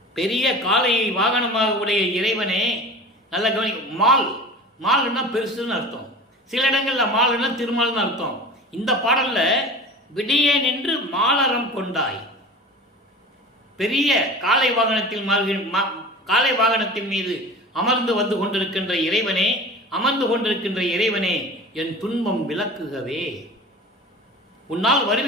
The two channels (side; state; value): both; normal; correlation 0.37